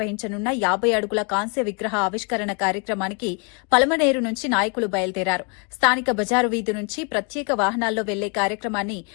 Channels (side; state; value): right; quieter; 34.9 dB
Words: 50 అడుగుల కాంస్య విగ్రహ ఆవిష్కరణ కార్యక్రమానికి పలమనేరు నుంచి నాయకులు బయలుదేరారు. స్థానిక బజారు వీధి నుంచి ప్రత్యేక వాహనాల్లో వెళ్లే కార్యక్రమాన్ని